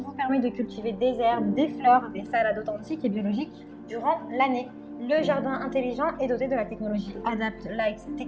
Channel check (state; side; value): identical; both; correlation 1.00